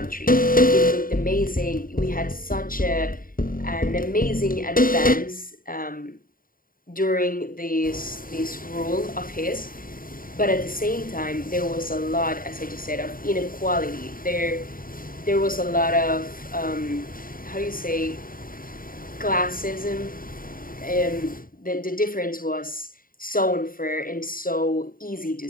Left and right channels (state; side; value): late; right; 0.41 ms